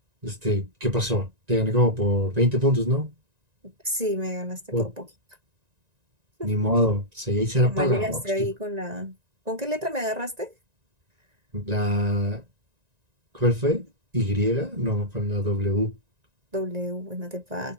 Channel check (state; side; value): late; left; 1.9 ms